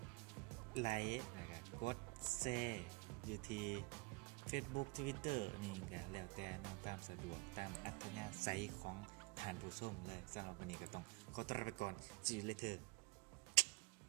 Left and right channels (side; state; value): left; quieter; 25.3 dB